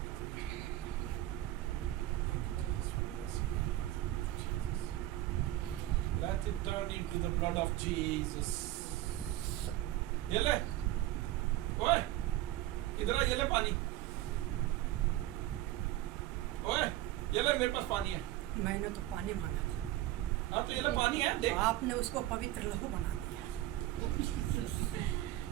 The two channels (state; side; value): quieter; left; 15.0 dB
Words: Let it turn into the blood of Jesus. ये ले, ओए, इधर आ, ये ले पानी। ओए, ये ले, मेरे पास पानी है। मैंने तो पानी मांगा था, हाँ तो ये ले पानी है, देख। आपने उसको पवित्र लहू बना दिया।